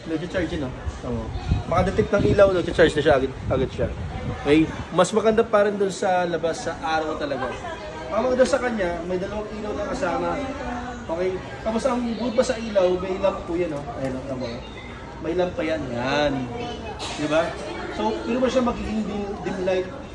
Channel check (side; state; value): both; identical; correlation 1.00